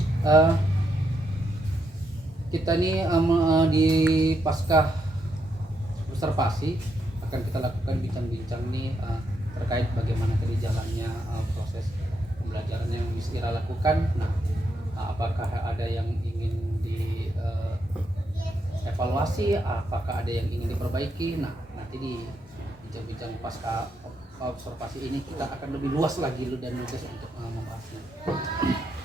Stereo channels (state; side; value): normal; both; correlation 0.80